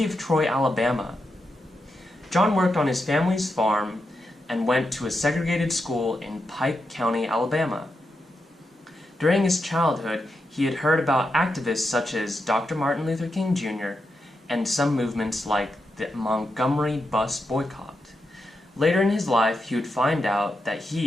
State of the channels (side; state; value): both; normal; correlation 0.86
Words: of Troy, Alabama. John worked on his family's farm and went to a segregated school in Pike County, Alabama. During his childhood, he had heard about activists such as Dr. Martin Luther King Jr. and some movements like the Montgomery bus boycott. Later in his life, he would find out that